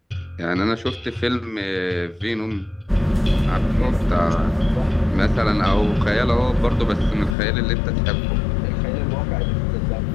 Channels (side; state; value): right; drops out; at 7.4 s